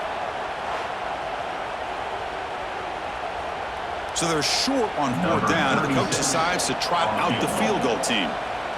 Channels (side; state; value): both; identical; correlation 1.00